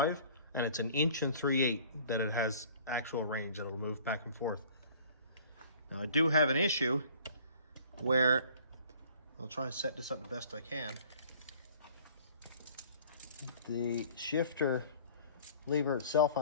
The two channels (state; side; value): inverted; both; correlation -0.51